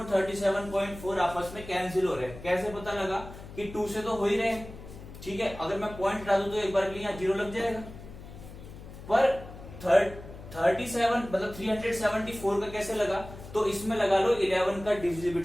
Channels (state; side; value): noise; left; hum, 15 dB below the sound